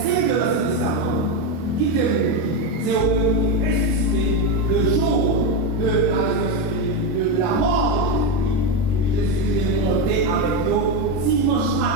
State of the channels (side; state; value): left; late; 22 ms